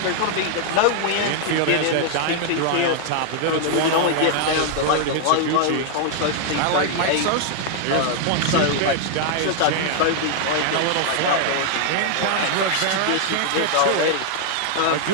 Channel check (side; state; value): both; different; correlation 0.00